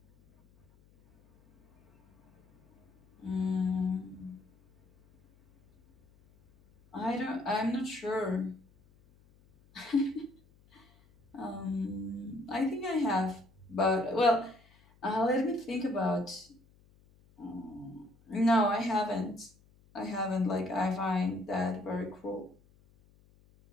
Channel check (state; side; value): noise; left; hum, 30 dB below the sound